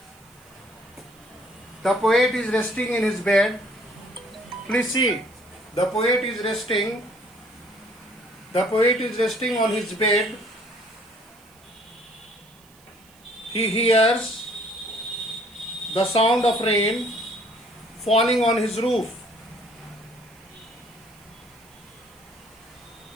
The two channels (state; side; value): noise; right; hiss, 28 dB below the sound